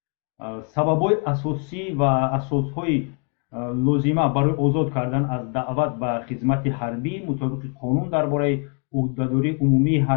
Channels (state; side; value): quieter; right; 37.5 dB